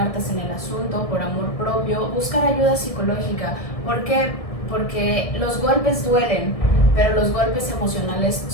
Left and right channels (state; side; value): late; right; 1.7 ms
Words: en el asunto por amor propio, buscar ayuda psicológica. ¿Por qué? Porque los golpes duelen, pero los golpes emocionales